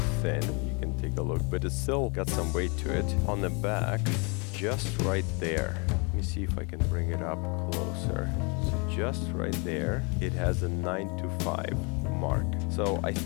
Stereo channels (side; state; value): right; quieter; 32.4 dB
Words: thin, you can take a look, but it's still got some weight to it. On the back, just right there. Let me see if I can bring it up closer. So just right there, it has a 9 to 5 mark. So I